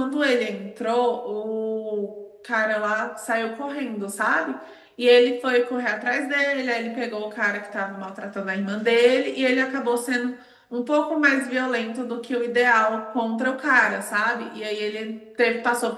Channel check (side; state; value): both; identical; correlation 1.00